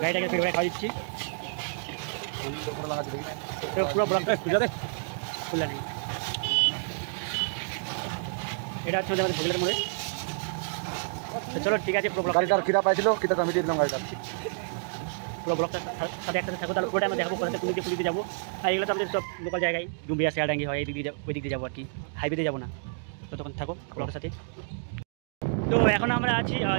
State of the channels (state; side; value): silent; left; digital silence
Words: গাড়িটাকে ফিরে খাওয়া দিচ্ছি। পুরো ব্লগটা খুলে নেই। এটা হচ্ছে আমাদের বগুড়ার মোড়ে। তো চলো ঠিক আছে, পুরো গাড়িটার কিরা পাইছিল কিটা কমিটি দিলাম গাড়িটা পুরো ব্লগটা সাথে একসাথে থাকো, তাহলে পুরোটা আমরা দেখাবো কোথাতে পুলিতে যাবো। আর এগুলো তো আমাদের সব লোকাল জায়গায় ডুমরিয়া শেয়ারডাঙ্গি হয়, এই দিক দিয়ে ওই দিক দিয়ে যাবো আর কি, হাইওয়েতে যাবো না। তো তখন থাকো ব্লগের সাথে। তো এখন আমরা আছি